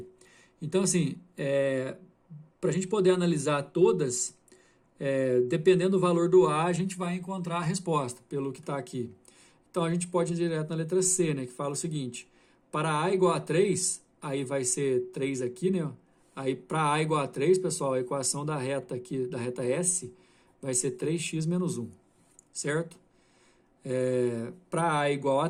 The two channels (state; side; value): identical; both; correlation 1.00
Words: Então, assim, para a gente poder analisar todas, dependendo do valor do A, a gente vai encontrar a resposta, pelo que está aqui. Então, a gente pode ir direto na letra C, né, que fala o seguinte: para A igual a 3, aí vai ser 3 aqui, né? Aí, para A igual a 3, pessoal, a equação da reta aqui, da reta S, vai ser 3x menos 1, certo? Para A igual a